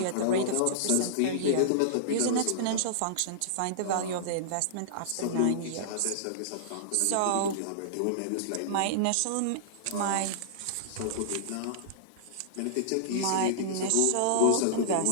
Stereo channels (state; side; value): different; both; correlation -0.02